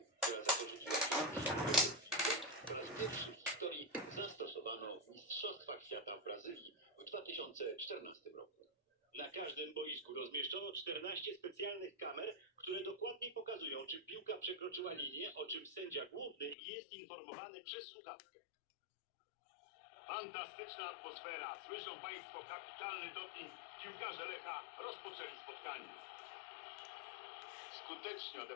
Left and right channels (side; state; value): right; drops out; at 16.6 s